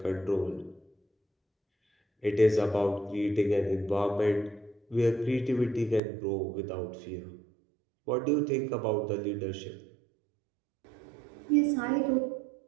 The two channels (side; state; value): left; drops out; at 6.0 s